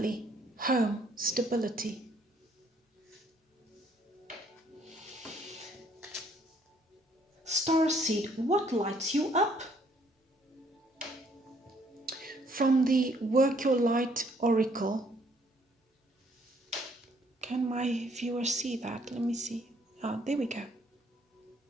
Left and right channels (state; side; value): normal; both; correlation 0.65